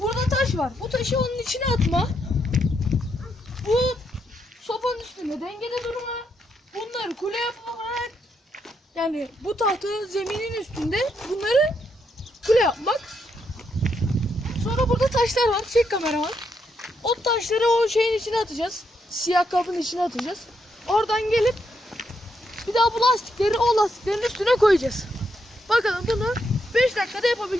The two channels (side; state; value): both; normal; correlation 0.79